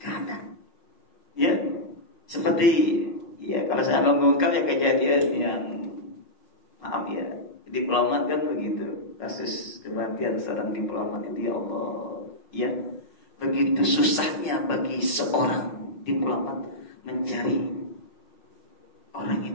ya, seperti ya kalau saya mengungkap ya kejadian yang maaf ya, diplomat kan begitu, kasus kematian seorang diplomat itu, ya Allah, ya begitu susahnya bagi seorang diplomat mencari orang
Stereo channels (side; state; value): right; late; 5.4 ms